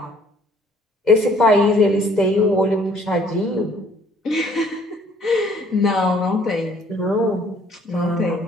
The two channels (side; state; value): both; normal; correlation 0.60